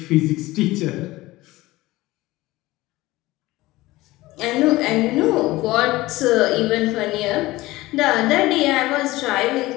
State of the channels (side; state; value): right; quieter; 18.8 dB